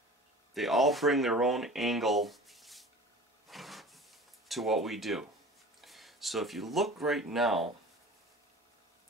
bring their own angle to what we do. So if you look right now,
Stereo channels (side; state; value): both; normal; correlation 0.40